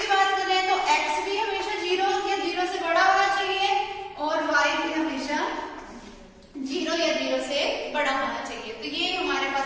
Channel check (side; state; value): both; identical; correlation 1.00